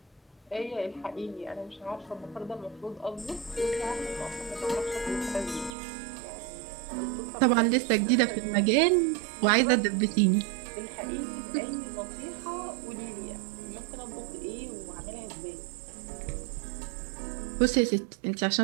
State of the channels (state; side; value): drops out; left; at 5.7 s